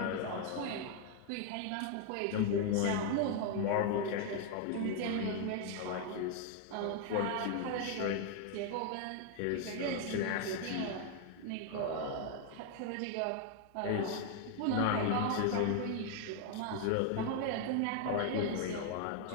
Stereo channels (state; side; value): different; both; correlation 0.00